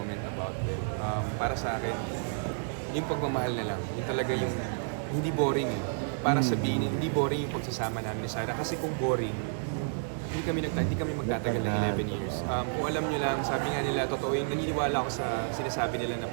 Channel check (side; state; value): left; silent; digital silence